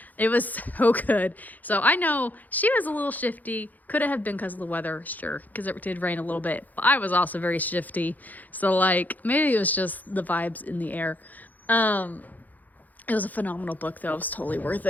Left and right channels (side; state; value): right; late; 0.082 ms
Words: It was so good. So I know she was a little shifty. Could have been because of the weather, sure, because it did rain a little bit. But I was also very shifty. So maybe it was just the vibes in the air. It was a phenomenal book, though. It was totally worth